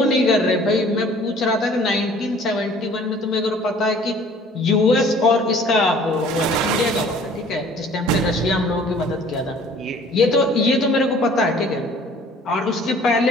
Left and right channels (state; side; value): normal; both; correlation 0.52